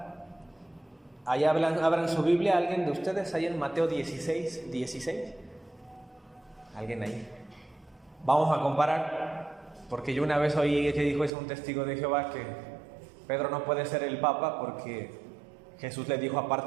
Ahí abran su Biblia, alguien de ustedes, ahí en Mateo 16. ¿Alguien ahí? Vamos a comparar, porque yo una vez oí que dijo eso un testigo de Jehová, que Pedro no puede ser el Papa porque Jesús le dijo,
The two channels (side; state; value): left; drops out; at 11.3 s